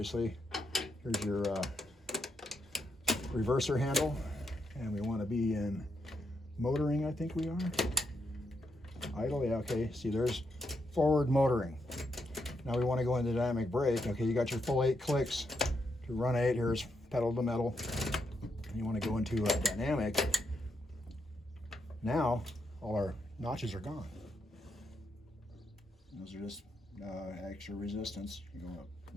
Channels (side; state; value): both; normal; correlation 0.80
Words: Here's your reverser handle. And we want to be in motoring, I think we are. Idle, yeah, okay. See, there's forward motoring. Now we want to go into dynamic brake. Okay, you got your full 8 clicks to run 8. Here's pedal to metal. you want to go into a dynamic, now all our notches are gone. Those are just extra resistance. You go up